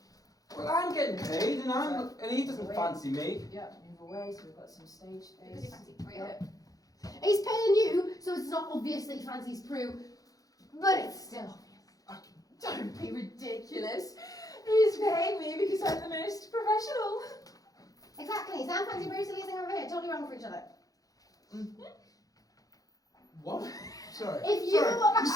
Well, I'm getting paid, and he doesn't fancy me. Yeah, move away so we've got some stage Because you space. fancy Prue. Yeah. He's paying you, so it's not obvious that he fancies Prue, but it's still obvious. Don't be ridiculous. He's paying me because I'm the most professional. Exactly. Sam fancy Prue, so leasing over here. Totally wrong for each other. What? Sorry. If you- Sorry. You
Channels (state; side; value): late; right; 0.17 ms